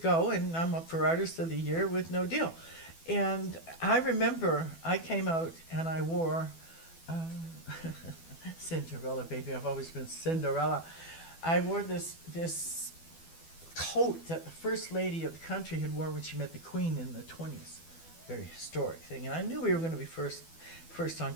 and I'm up for Artist of the Year with no deal. And I remember I came out and I wore Cinderella, baby. I've always been Cinderella. I wore this coat that the First Lady of the country had worn when she met the Queen in the 20s. Very historic thing. And I knew we were going to be first on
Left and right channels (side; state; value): right; late; 12 ms